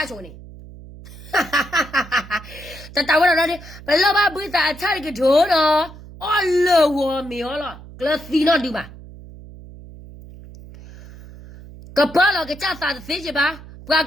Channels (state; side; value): noise; right; hum, 17 dB below the sound